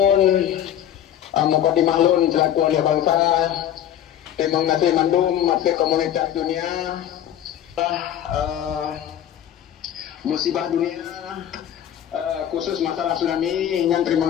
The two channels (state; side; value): quieter; right; 10.7 dB